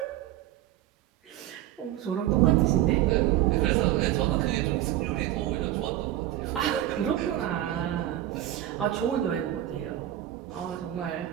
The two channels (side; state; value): left; quieter; 13.5 dB